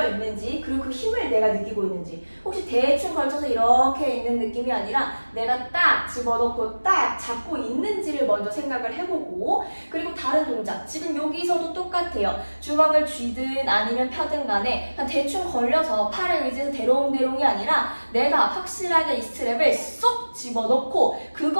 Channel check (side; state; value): both; inverted; correlation -1.00